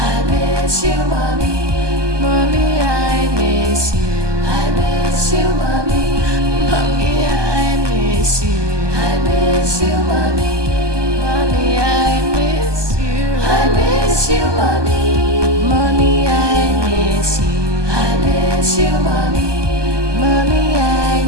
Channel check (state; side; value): late; left; 1.2 ms